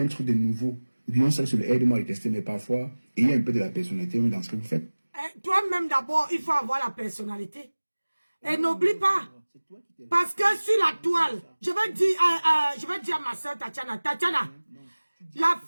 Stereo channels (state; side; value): inverted; both; correlation -1.00